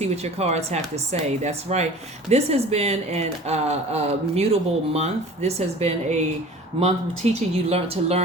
what your cards have to say. That's right. This has been a mutable month. This has been a month teaching you to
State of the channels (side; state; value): both; normal; correlation 0.43